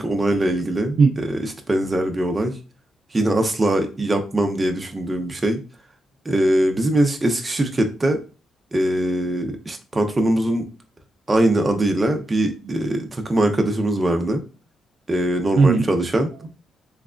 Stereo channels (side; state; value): both; normal; correlation 0.87